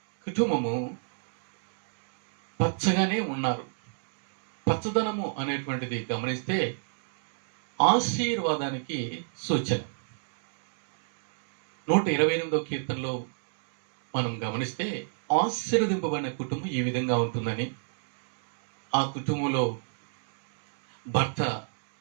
కుటుంబము పచ్చగానే ఉన్నారు. పచ్చదనము అనేటువంటిది గమనిస్తే ఆశీర్వాదానికి సూచన. 128వ కీర్తనలో మనం గమనిస్తే ఆశీర్వదింపబడిన కుటుంబం ఈ విధంగా ఉంటుందని, ఆ కుటుంబంలో భర్త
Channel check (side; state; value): left; silent; digital silence